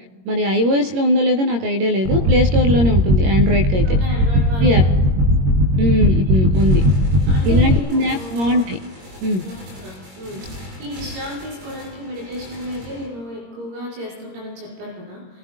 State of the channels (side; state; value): left; late; 21 ms